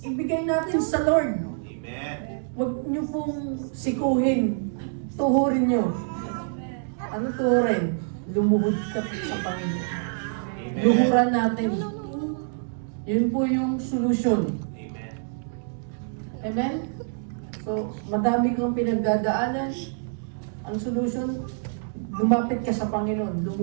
Ibigay natin sa Lord. Amen. Huwag niyo pong sikuhin. Tuhurin niyo. Ano tuhurin? Lumuhod ka sa Panginoon. Amen. Luhuran natin. Yun po yung solution. Amen. Amen? So, madami kang pinagdadaanan. Ang solution, lumapit ka sa Panginoon,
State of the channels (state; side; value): silent; left; digital silence